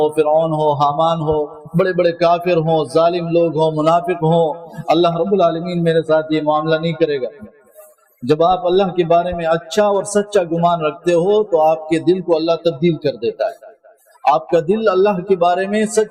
فرعون ہو، حامان ہو، بڑے بڑے کافر ہوں، ظالم لوگ ہوں، منافق ہوں، اللہ رب العالمین میرے ساتھ یہ معاملہ نہیں کرے گا۔ جب آپ اللہ کے بارے میں اچھا اور سچا گمان رکھتے ہو تو آپ کے دل کو اللہ تبدیل کر دیتا ہے، آپ کا دل اللہ کے بارے میں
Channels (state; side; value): identical; both; correlation 1.00